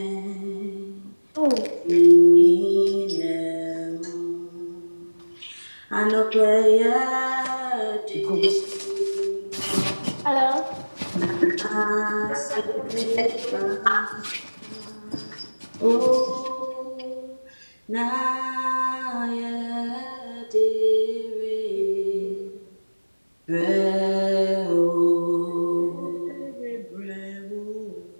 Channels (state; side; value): inverted; both; correlation -1.00